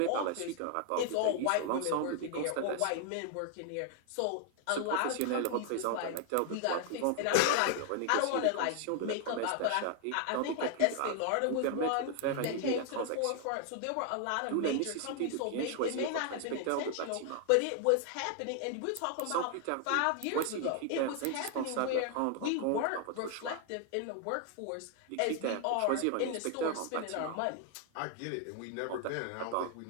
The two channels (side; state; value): both; different; correlation 0.00